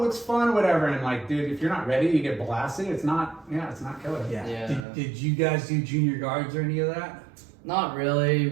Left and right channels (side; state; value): left; drops out; at 4.9 s